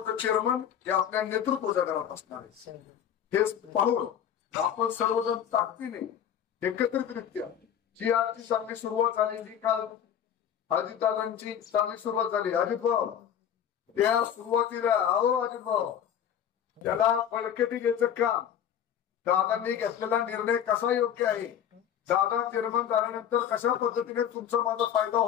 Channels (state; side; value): quieter; right; 9.3 dB